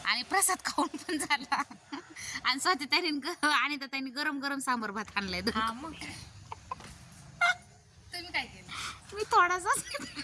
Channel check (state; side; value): identical; both; correlation 1.00